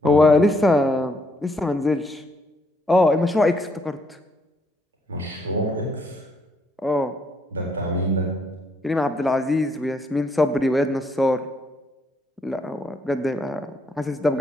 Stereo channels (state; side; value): normal; both; correlation 0.72